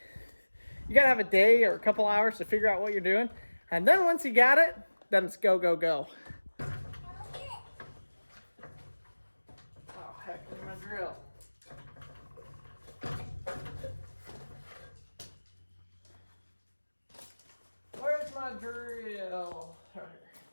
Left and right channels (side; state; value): both; inverted; correlation -1.00